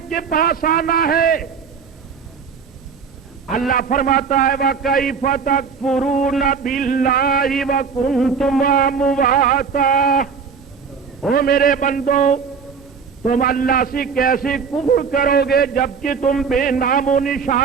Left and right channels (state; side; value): quieter; left; 5.9 dB